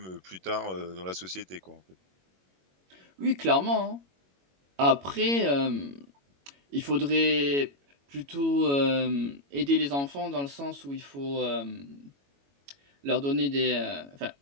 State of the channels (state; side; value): late; left; 21 ms